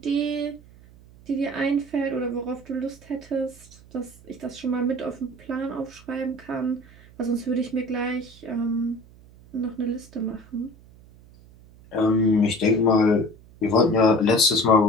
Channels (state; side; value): noise; right; hum, 24 dB below the sound